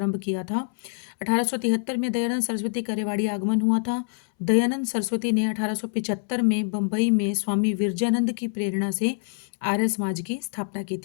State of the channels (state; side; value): silent; right; 61 dB below the other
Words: किया था। 1873 में दयानंद सरस्वती का रेवाड़ी आगमन हुआ था। दयानंद सरस्वती ने 1875 में बम्बई में स्वामी विरजानंद की प्रेरणा से आर्य समाज की स्थापना की